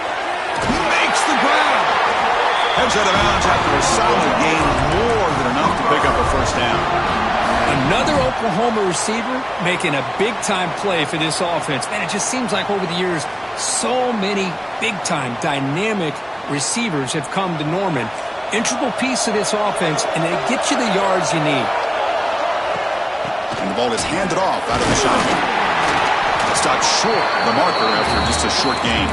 He makes the grab. Heads out of bounds after a solid gain, more than enough to pick up a first down. Another Oklahoma receiver making a big-time play for this offense. Man, it just seems like over the years, so many big-time, dynamic receivers have come to Norman. Integral piece of this offense, and they get you the yards you need. And the ball is handed off out of the shotgun. Stopped short of the marker after just a short gain.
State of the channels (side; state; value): both; identical; correlation 1.00